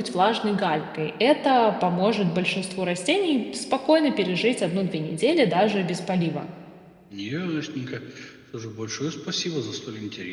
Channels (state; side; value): identical; both; correlation 1.00